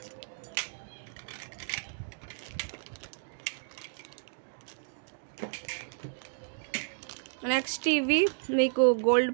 నెక్స్ట్ ఇవి మీకు గోల్డ్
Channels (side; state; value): left; silent; digital silence